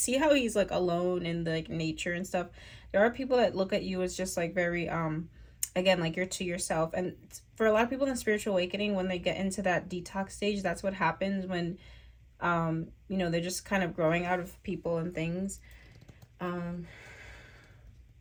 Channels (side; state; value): both; identical; correlation 1.00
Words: how he's like alone in the like nature and stuff. There are people that look at you as just like very again, like you're to yourself. And for a lot of people in the spiritual awakening, when they get into that detox stage, that's what happens when you know, they're just kind of growing out of people and things.